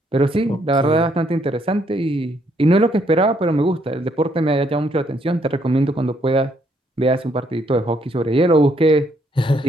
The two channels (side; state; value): both; normal; correlation 0.71